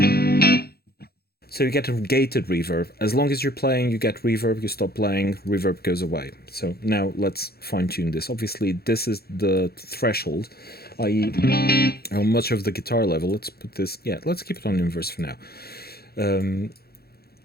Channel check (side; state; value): right; late; 0.46 ms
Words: So you get a gated reverb. As long as you're playing, you get reverb. You stop playing, reverb goes away. So now let's fine-tune this. Obviously, this is the threshold, i.e. how much of the guitar level. Let's put this, yeah, let's keep it on inverse for now.